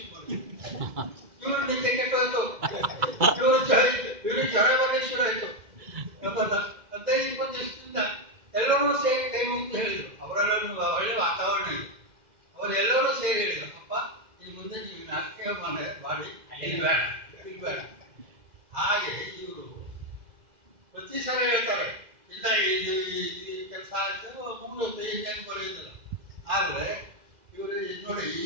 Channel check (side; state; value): left; late; 2.0 ms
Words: ಮಾಡಿದ್ರು. ಇವರು ನಿದ್ದೆ ಕೆಟ್ಟೋಯ್ತು, ಇವರು ಜ್ವರ ಬರಲಿ ಶುರು ಆಯ್ತು. 15-20 ದಿವಸದಿಂದ ಎಲ್ಲರೂ ಸೇರಿ ಕೈ ಮುಗಿದು ಹೇಳಿದ್ರು. ಅವರೆಲ್ಲರೂ ಒಳ್ಳೆ ವಾತಾವರಣ ಇದೆ, ಅವರೆಲ್ಲರೂ ಸೇರಿ ಹೇಳಿದ್ರು, ಅಪ್ಪ ಇನ್ನು ಮುಂದೆ ನೀವು ನಾಟಕ ಮಾಡಿ ಬೇಡ. ಹಾಗೆ ಇವರು ಪ್ರತಿ ಸಲ ಹೇಳ್ತಾರೆ, ಇಲ್ಲ ಇದು ಈ ಕೆಲಸ ಆಯ್ತು ಮುಗಿದೋಯ್ತು, ಇನ್ನೇನು ಬರೆಯುತ್ತಿಲ್ಲ. ಆದರೆ ಇವರು ನೋಡಿ,